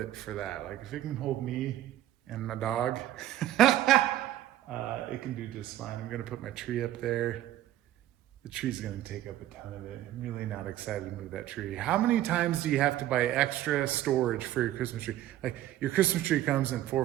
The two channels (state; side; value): quieter; left; 13.5 dB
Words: for that. Like, if it can hold me and my dog, it can do just fine. I'm going to put my tree up there. The tree's going to take up a ton of it. I'm really not excited to move that tree. How many times do you have to buy extra storage for your Christmas tree? Like, your Christmas tree comes in 4